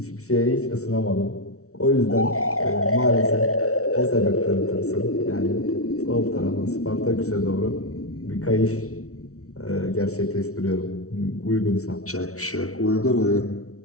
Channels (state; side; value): late; right; 0.64 ms